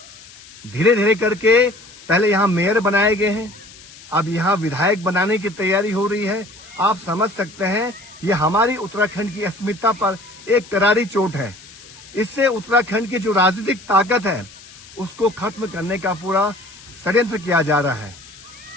धीरे धीरे करके पहले यहाँ मेयर बनाए गए हैं, अब यहाँ विधायक बनाने की तैयारी हो रही है। आप समझ सकते हैं ये हमारी उत्तराखंड की अस्मिता पर एक करारी चोट है। इससे उत्तराखंड की जो राजनीतिक ताकत है उसको खत्म करने का पूरा षड्यंत्र किया जा रहा है।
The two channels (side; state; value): left; noise; hiss, 20 dB below the sound